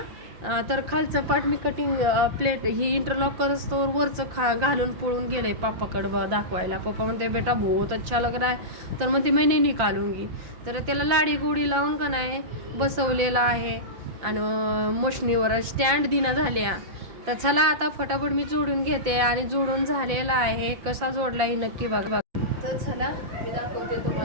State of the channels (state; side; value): late; left; 5.8 ms